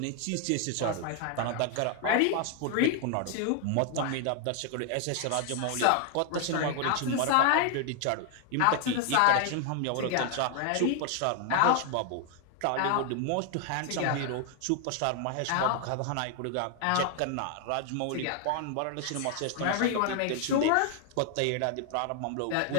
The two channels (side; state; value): both; different; correlation 0.00